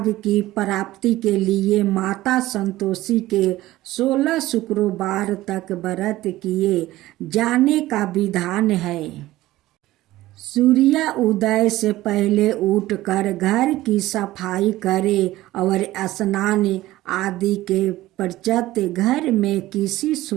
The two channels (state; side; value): quieter; left; 16.5 dB